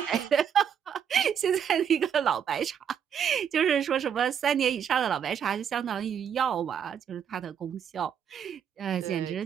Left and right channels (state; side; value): quieter; left; 8.2 dB